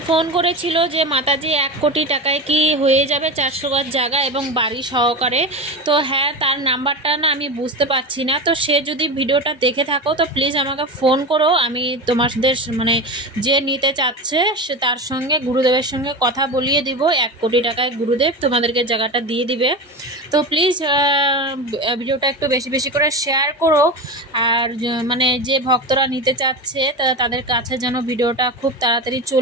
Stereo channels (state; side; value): normal; both; correlation 0.23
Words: ফোন করেছিল যে মাতাজি 1 কোটি টাকায় কি হয়ে যাবে 400 গজ জায়গা এবং বাড়ি সহকারে। তো হ্যাঁ, তার নাম্বারটা না আমি বুঝতে পারছি না, তো সে যদি ভিডিওটা দেখে থাকো তো প্লিজ আমাকে ফোন করো, আমি তোমাদের মানে যে নিতে চাচ্ছে সে তার সঙ্গে গুরুদেবের সঙ্গে কথা বলিয়ে দিব। 1 কোটি টাকায় গুরুদেব তোমাদেরকে জায়গাটা দিয়ে দিবে। তো প্লিজ ভিডিওটা একটু বেশি বেশি করে শেয়ার করো, আর মানে যে ভক্তরা নিতে চাচ্ছে তাদের কাছে যেন ভিডিওটা খুব তাড়াতাড়ি